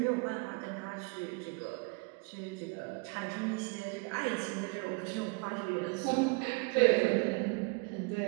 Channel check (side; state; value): left; quieter; 31.3 dB